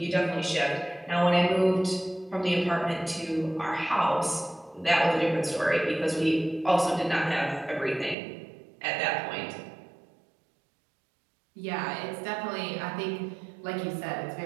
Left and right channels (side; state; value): left; drops out; at 8.2 s